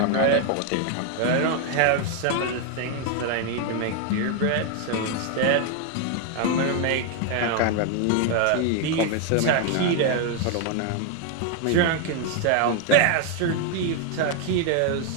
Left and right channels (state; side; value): different; both; correlation 0.01